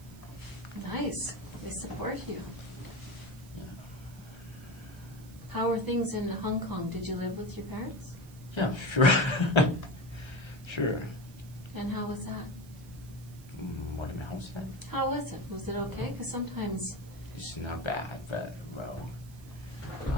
Nice. They support you. yeah. How are things in Hong Kong? Did you live with your parents? Yeah, sure. Sure. And how was that? What am I house at? How was it? Was it okay? Because sometimes... It's not bad, but, well,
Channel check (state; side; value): noise; right; hiss, 23 dB below the sound